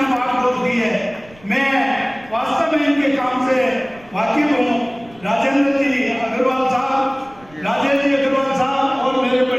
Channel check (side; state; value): right; noise; rumble, 26 dB below the sound